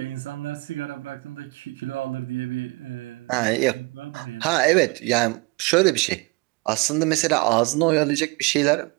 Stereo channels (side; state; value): left; quieter; 25.9 dB